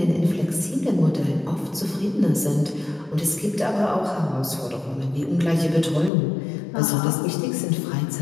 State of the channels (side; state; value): right; drops out; at 6.1 s